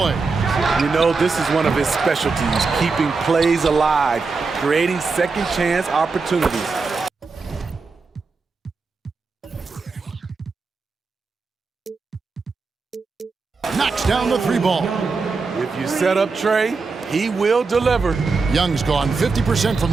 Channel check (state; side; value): quieter; left; 4.4 dB